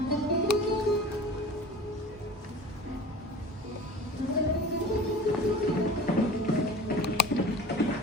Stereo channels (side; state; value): both; normal; correlation 0.38